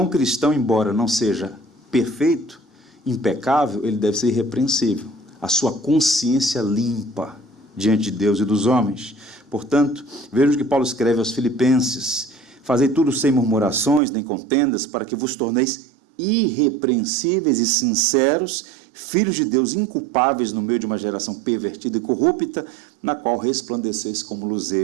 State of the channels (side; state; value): left; drops out; at 14.0 s